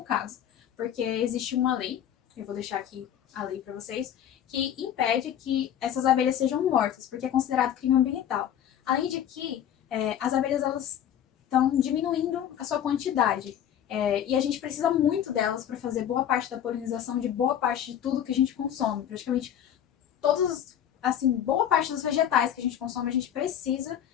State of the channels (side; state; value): right; quieter; 10.1 dB